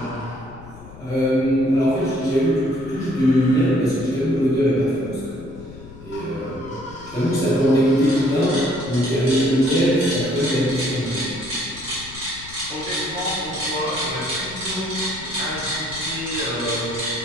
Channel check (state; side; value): noise; left; rumble, 17 dB below the sound